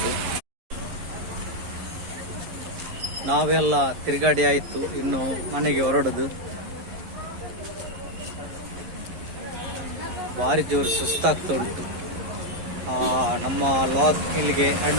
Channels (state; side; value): late; left; 11 ms